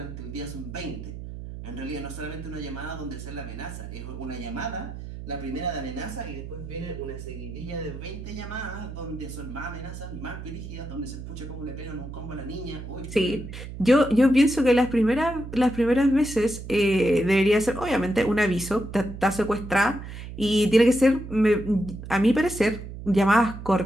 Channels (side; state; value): right; noise; hum, 10 dB below the sound